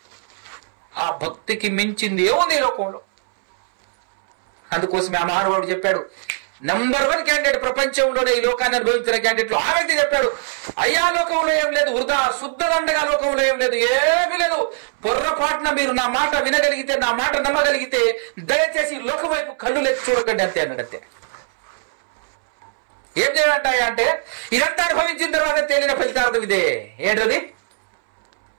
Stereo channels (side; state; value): left; silent; 65 dB below the other